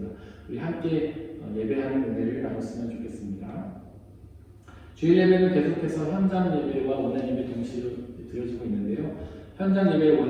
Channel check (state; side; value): identical; both; correlation 1.00